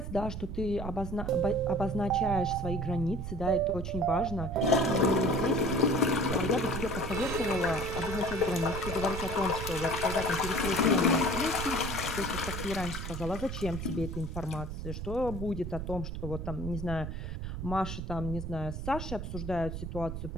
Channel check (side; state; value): right; noise; rumble, 6 dB below the sound